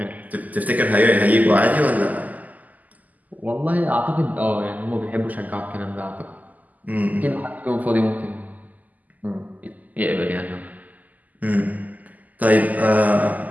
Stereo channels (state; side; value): late; left; 0.079 ms